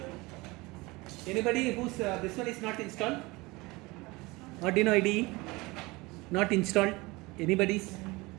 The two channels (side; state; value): left; quieter; 23.2 dB